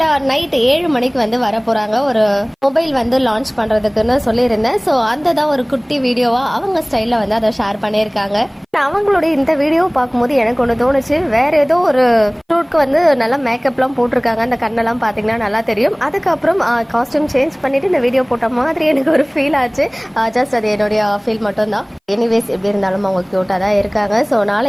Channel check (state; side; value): identical; both; correlation 1.00